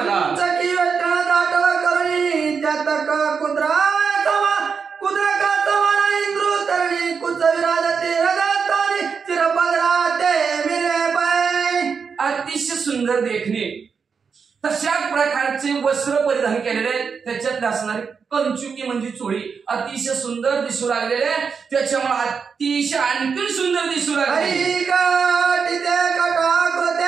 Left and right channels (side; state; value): left; quieter; 5.9 dB